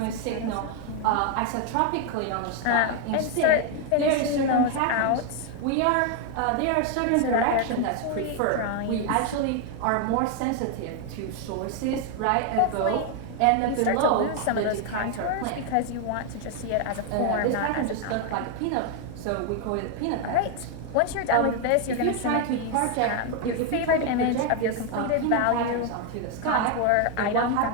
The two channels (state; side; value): different; both; correlation 0.01